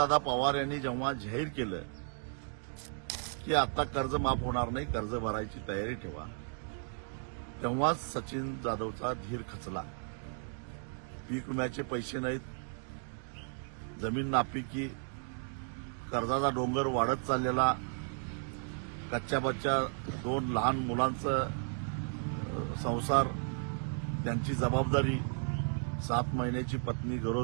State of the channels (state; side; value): silent; left; 55 dB below the other